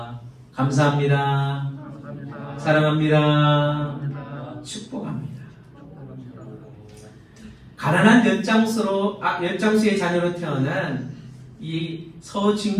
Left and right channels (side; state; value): both; identical; correlation 1.00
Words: 감사합니다. 사랑합니다. 축복합니다. 가난한 엿장수의 자녀로 태어난 이